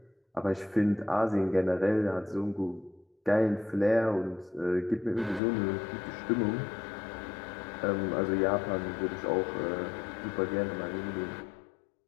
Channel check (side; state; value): right; drops out; at 5.4 s